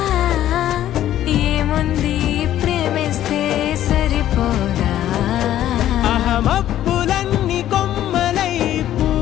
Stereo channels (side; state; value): right; quieter; 12.4 dB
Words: ఏముంది ప్రేమిస్తే సరిపోదా. అహమప్పులన్నీ కొమ్మలై